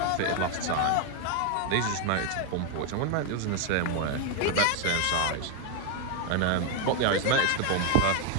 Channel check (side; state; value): both; different; correlation 0.01